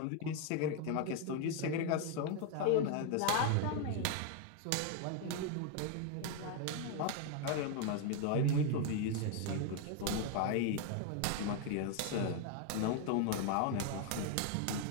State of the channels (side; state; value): both; different; correlation 0.01